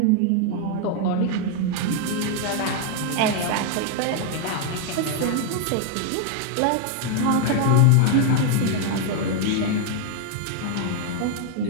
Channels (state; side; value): different; both; correlation 0.00